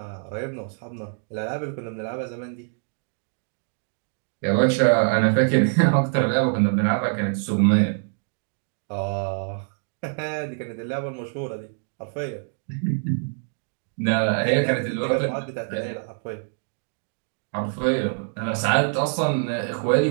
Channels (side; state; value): left; silent; 62 dB below the other